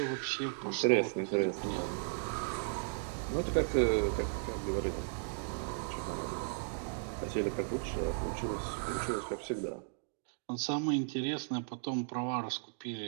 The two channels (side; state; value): left; silent; digital silence